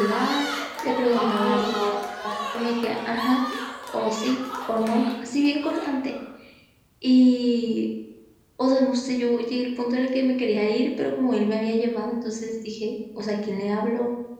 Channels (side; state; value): both; identical; correlation 1.00